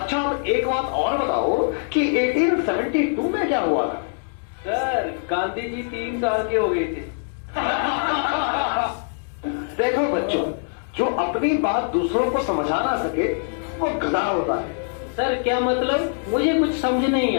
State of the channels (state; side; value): silent; right; digital silence